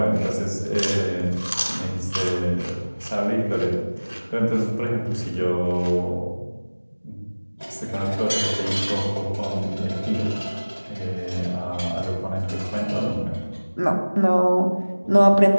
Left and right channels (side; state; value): both; inverted; correlation -1.00